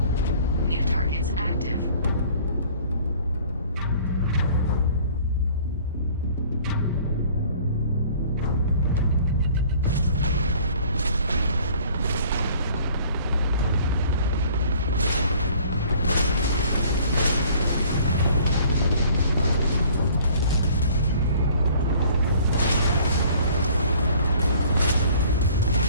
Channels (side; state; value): both; inverted; correlation -0.53